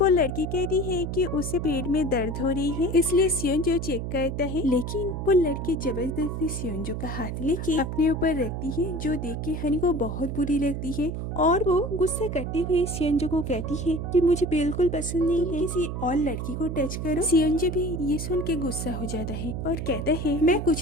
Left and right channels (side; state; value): right; noise; hum, 4 dB below the sound